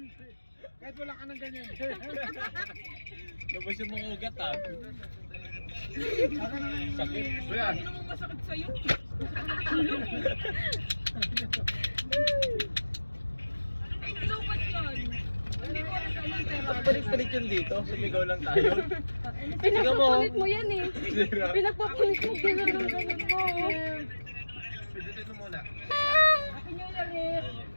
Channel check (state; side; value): inverted; both; correlation -1.00